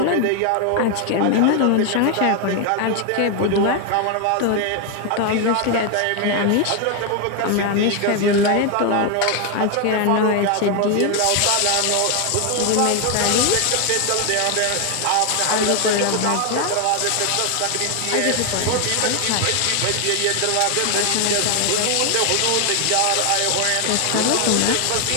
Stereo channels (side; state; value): both; different; correlation 0.01